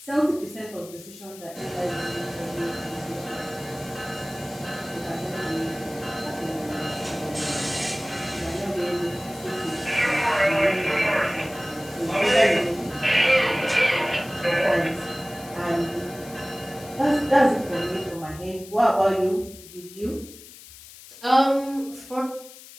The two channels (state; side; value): noise; left; hiss, 18 dB below the sound